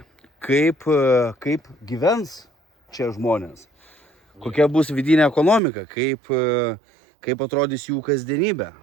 Kaip gyvens čia žmonės, kokia bus vidinė ekonomika, kaip atrodys jų kasdienybė,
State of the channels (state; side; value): drops out; left; at 5.6 s